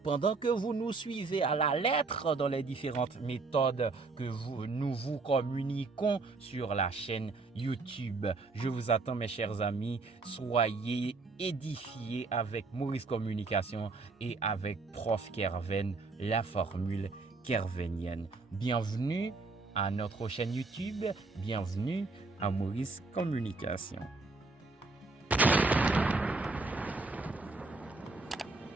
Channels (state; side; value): quieter; left; 3.8 dB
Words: pendant que vous nous suivez à la lettre dans les différentes méthodes que nous vous communiquons sur la chaîne YouTube. Je vous attends, mes chers amis. Soyez édifiés avec Maurice Communication et avec Prof Kerven, la formule kervenienne. Bienvenue à notre chaîne YouTube. Bienvenue à Maurice Communication.